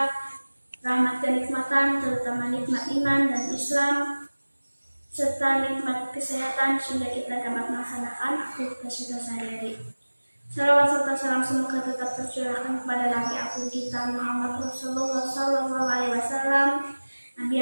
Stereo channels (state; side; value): inverted; both; correlation -1.00